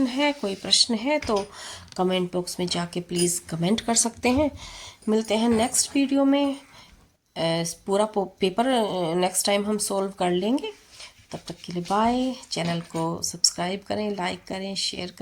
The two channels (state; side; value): identical; both; correlation 1.00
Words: है, कोई प्रश्न है, तो कमेंट बॉक्स में जाके प्लीज़ कमेंट कर सकते हैं। मिलते हैं नेक्स्ट वीडियो में। पूरा पेपर नेक्स्ट टाइम हम सोल्व कर लेंगे। तब तक के लिए बाय। चैनल को सब्सक्राइब करें, लाइक करें, शेयर